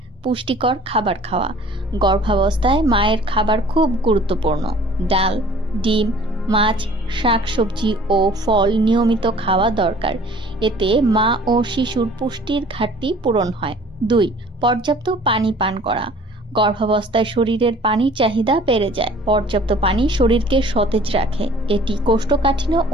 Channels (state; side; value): normal; both; correlation 0.51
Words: পুষ্টিকর খাবার খাওয়া। গর্ভাবস্থায় মায়ের খাবার খুব গুরুত্বপূর্ণ। ডাল, ডিম, মাছ, শাকসবজি ও ফল নিয়মিত খাওয়া দরকার। এতে মা ও শিশুর পুষ্টির ঘাটতি পূরণ হয়। 2. পর্যাপ্ত পানি পান করা। গর্ভাবস্থায় শরীরের পানির চাহিদা বেড়ে যায়। পর্যাপ্ত পানি শরীরকে সতেজ রাখে। এটি কোষ্ঠকাঠিন্য